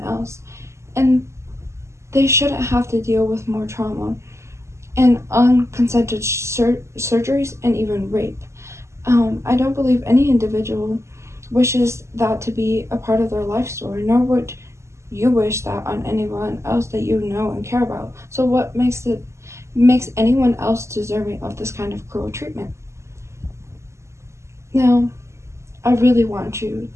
else, and they shouldn't have to deal with more trauma and unconsented surgeries and even rape. I don't believe any individual wishes that to be a part of their life story, nor would you wish that on anyone else that you know and care about. So what makes anyone else deserving of this kind of cruel treatment? Now, I really want you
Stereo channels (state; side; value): late; left; 0.13 ms